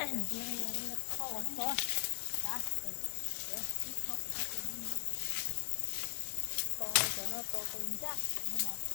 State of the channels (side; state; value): right; silent; 52 dB below the other